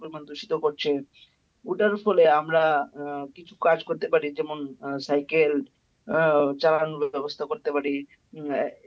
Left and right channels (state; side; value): identical; both; correlation 1.00